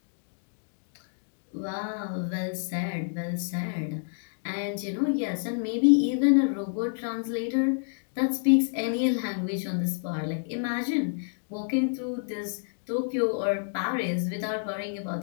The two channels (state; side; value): silent; right; digital silence